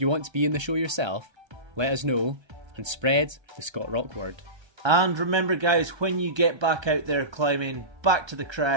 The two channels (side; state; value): left; late; 1.3 ms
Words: want to be in the show yourself, let us know and spread the Scott Rock word. And remember guys, when you get back out there climbing, back to the